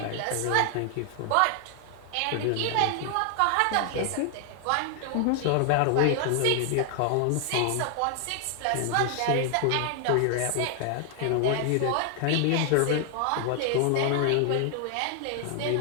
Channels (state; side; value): different; both; correlation 0.00